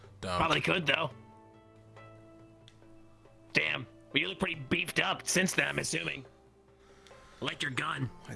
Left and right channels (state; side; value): identical; both; correlation 1.00